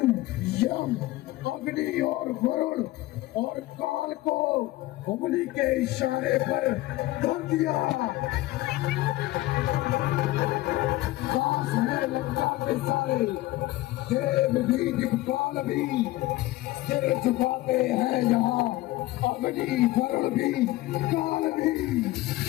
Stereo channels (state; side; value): quieter; right; 17.7 dB